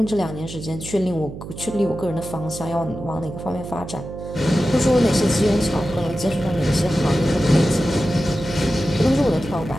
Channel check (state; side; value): noise; right; hum, 11 dB below the sound